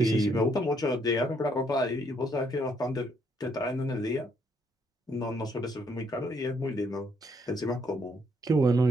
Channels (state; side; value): normal; both; correlation 0.71